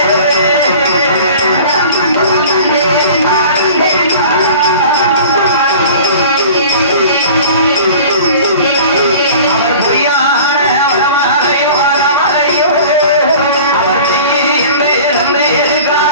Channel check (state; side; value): inverted; both; correlation -0.43